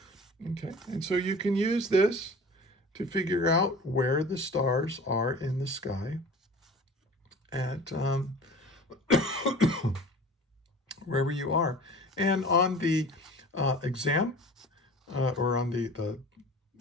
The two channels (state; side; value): normal; both; correlation 0.41